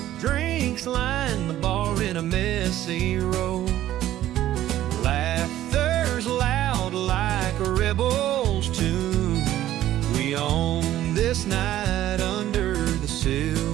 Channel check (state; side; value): quieter; left; 13.2 dB